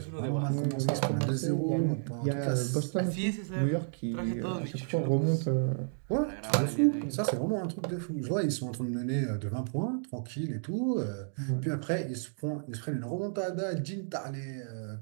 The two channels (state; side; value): silent; left; digital silence